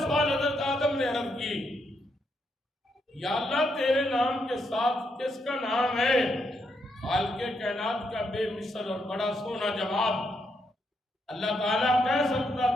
حضرت آدم نے عرض کی یا اللہ تیرے نام کے ساتھ کس کا نام ہے؟ خالق کائنات کا بے مثل اور بڑا سونا جواب، اللہ تعالیٰ کہہ سکتا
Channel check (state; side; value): normal; both; correlation 0.78